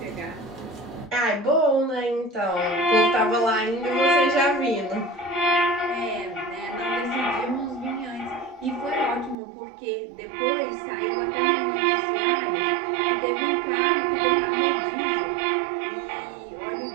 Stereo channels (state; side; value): drops out; left; at 9.3 s